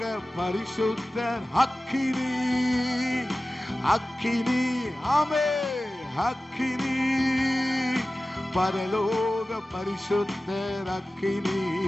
பரிசுத்தர் அக்கினி அக்கினி. ஆமே அக்கினி பரலோக பரிசுத்தர் அக்கினி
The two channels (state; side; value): normal; both; correlation 0.96